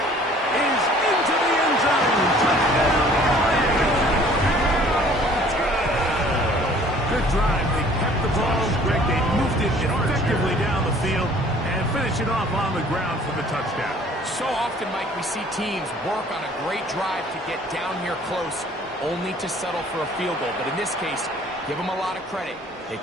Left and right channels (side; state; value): both; normal; correlation 0.53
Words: is into the end zone. Touchdown, LA. Good drive. They kept the ball. Greg, they moved it effectively down the field and finish it off on the ground for the touchdown. So often, Mike, we see teams work on a great drive to get down here close, only to settle for a field goal. But in this case, give them a lot of credit. They